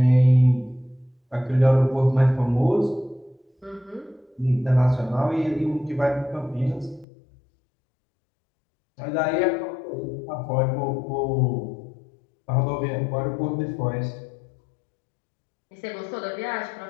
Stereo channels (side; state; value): right; drops out; at 7.1 s